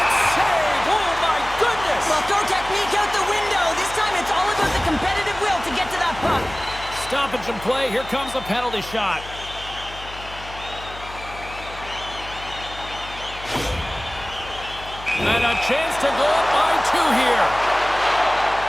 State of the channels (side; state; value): left; noise; hum, 15 dB below the sound